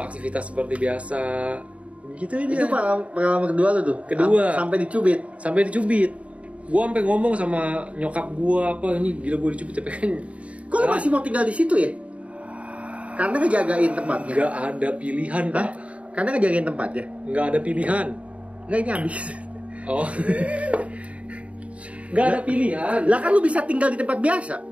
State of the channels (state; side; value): late; left; 0.065 ms